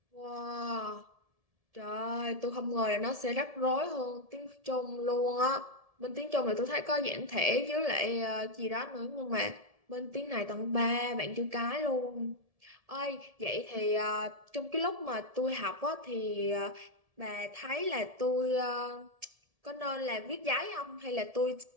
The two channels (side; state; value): left; late; 1.7 ms